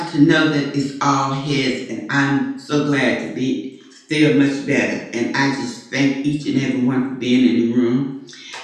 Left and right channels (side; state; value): both; identical; correlation 1.00